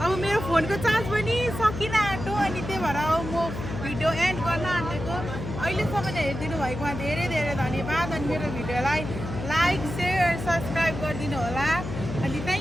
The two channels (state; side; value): noise; left; hum, 7 dB below the sound